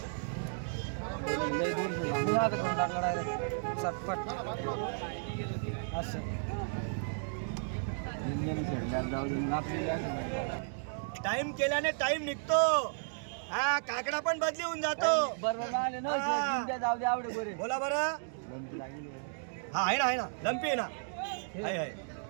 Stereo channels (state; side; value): silent; left; digital silence